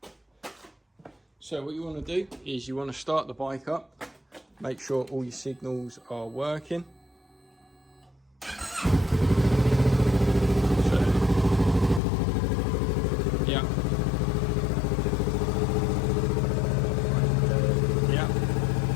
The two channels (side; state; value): right; drops out; at 12.0 s